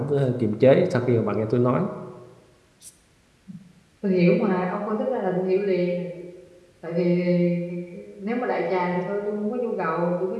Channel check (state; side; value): identical; both; correlation 1.00